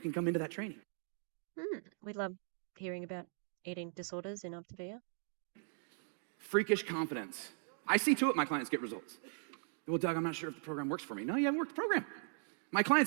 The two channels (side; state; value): left; silent; 52 dB below the other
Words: can come into that training. We love hearing about eating disorders in Optavia. Freakish confidence. I see to it my clients get results. Well, Doug, I'm not sure if the program works for me. No, you haven't worked the program. My